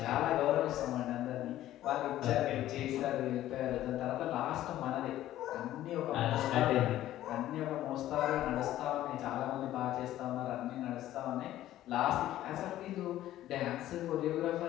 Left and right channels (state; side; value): quieter; right; 13.7 dB